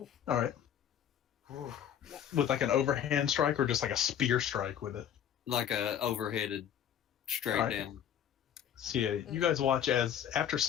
All right. With like an overhand strike or just like a spear strike with it? Like a overheaded straight Alright. down. So yeah, you guys watch as after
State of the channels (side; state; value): right; quieter; 9.5 dB